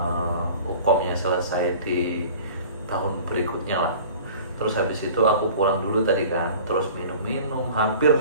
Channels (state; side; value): inverted; both; correlation -0.44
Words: hukumnya selesai di tahun berikutnya lah. Terus habis itu aku pulang dulu tadi kan, terus minum hampir